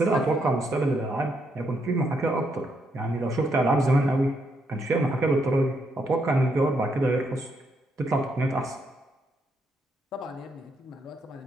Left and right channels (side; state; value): both; normal; correlation 0.77